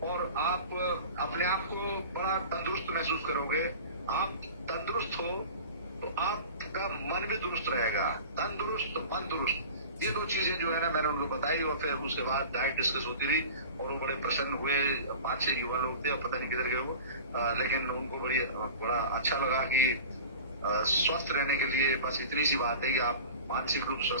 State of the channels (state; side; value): inverted; both; correlation -0.37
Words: और आप अपने आप को बड़ा तंदुरुस्त महसूस करोगे। आप तंदुरुस्त हो तो आपका मन भी दुरुस्त रहेगा। तंदुरुस्त, मन दुरुस्त, ये दो चीजें जो है ना मैंने उनको बताई, और फिर उसके बाद डाइट डिस्कस होती रही और वो बड़े प्रसन्न हुए। 5-6 युवा लोग थे, और पता नहीं किधर गए वो, लेकिन उनको बड़ा अच्छा लगा कि स्वस्थ रहने के लिए बस इतनी सी बात है कि आप मानसिक रूप से